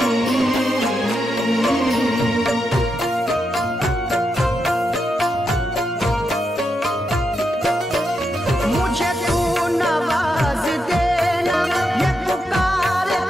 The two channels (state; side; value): normal; both; correlation 0.85